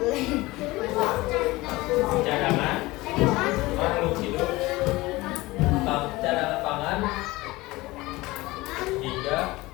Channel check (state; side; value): quieter; right; 20.5 dB